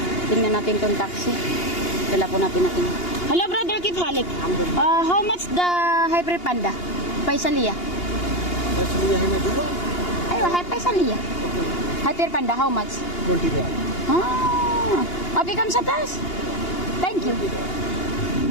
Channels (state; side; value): late; right; 2.8 ms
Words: Tingnan natin tong taxi. Dala po natin. Hello brother, keep halik. How much the hybrid panda? Paisalia. Paisalia hai na dua. Ayo, Paisalia. Okay. Hybrid panda, how much? 20 baht. Abi kam sa taas. Thank you.